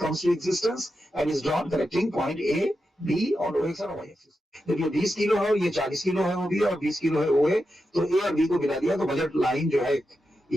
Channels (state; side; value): normal; both; correlation 0.88